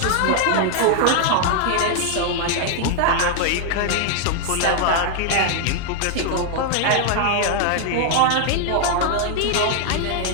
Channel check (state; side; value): different; both; correlation 0.00